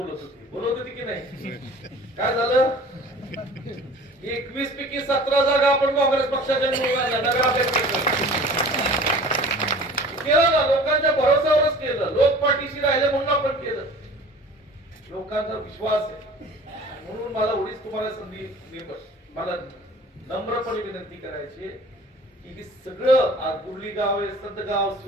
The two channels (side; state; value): both; normal; correlation 0.44